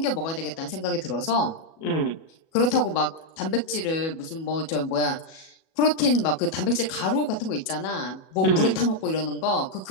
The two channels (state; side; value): late; right; 37 ms